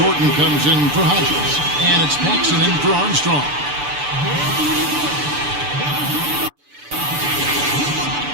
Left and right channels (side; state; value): left; late; 6.9 ms